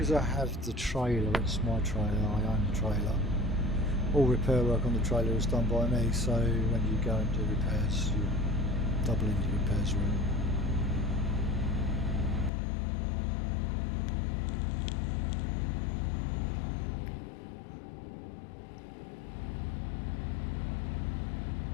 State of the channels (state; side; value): drops out; right; at 12.5 s